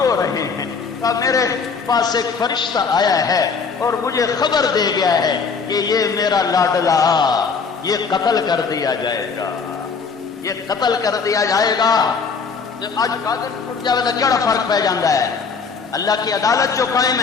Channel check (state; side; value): quieter; right; 5.3 dB